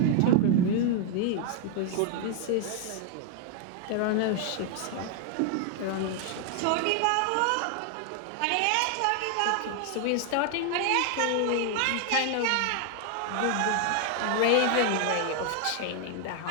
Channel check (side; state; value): both; different; correlation 0.00